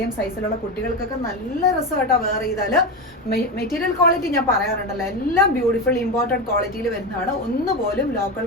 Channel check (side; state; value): both; normal; correlation 0.17